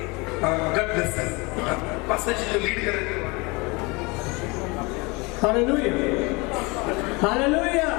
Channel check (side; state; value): right; quieter; 26.4 dB